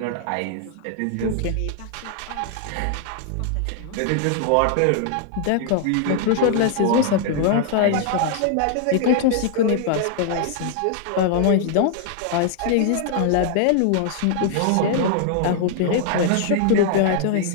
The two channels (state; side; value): different; both; correlation 0.00